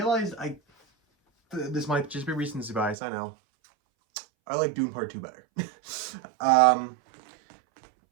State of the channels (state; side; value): drops out; left; at 3.0 s